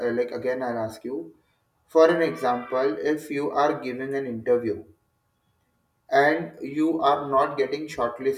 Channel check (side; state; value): both; identical; correlation 1.00